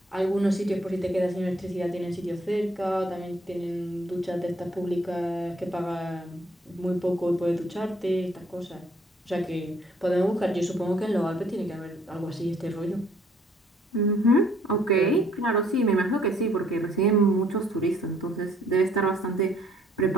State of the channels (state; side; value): normal; both; correlation 0.63